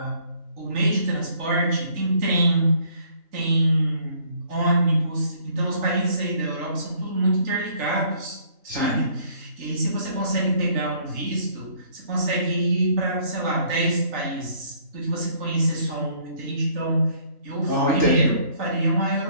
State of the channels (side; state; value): left; late; 3.8 ms